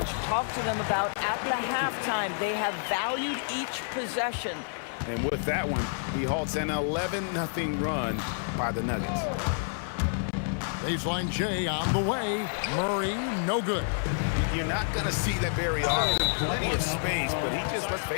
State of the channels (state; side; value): silent; right; 59 dB below the other